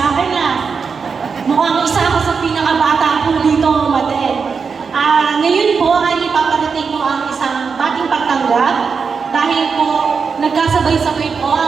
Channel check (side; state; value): left; quieter; 5.5 dB